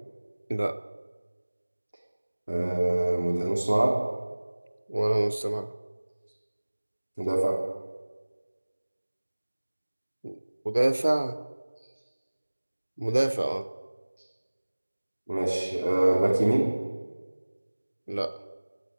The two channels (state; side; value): inverted; both; correlation -1.00